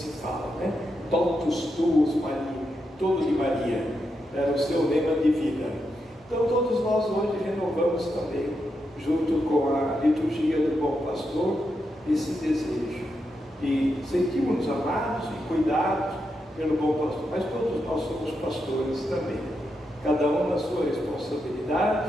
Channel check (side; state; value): both; normal; correlation 0.85